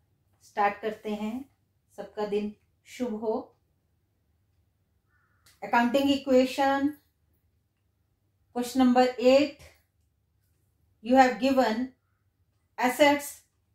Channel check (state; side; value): identical; both; correlation 1.00